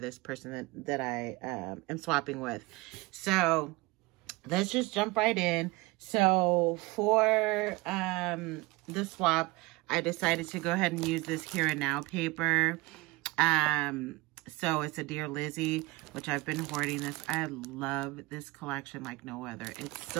person that I am swapping with. So let's just jump right in. So for the swap, I decided to go ahead and use this Here and Now paper. So it's a Dear Lizzie, which I've been hoarding this. I love this collection like no other. It's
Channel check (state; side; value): quieter; left; 23.0 dB